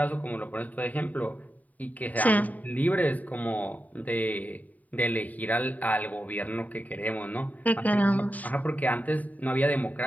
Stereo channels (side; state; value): right; late; 0.075 ms